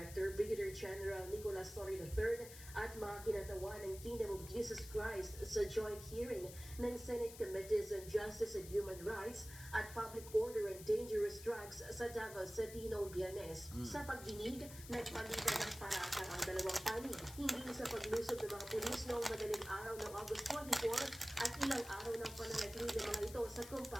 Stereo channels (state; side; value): noise; left; hiss, 14 dB below the sound